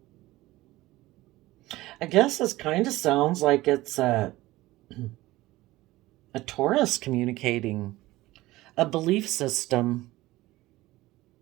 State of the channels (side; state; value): left; quieter; 18.1 dB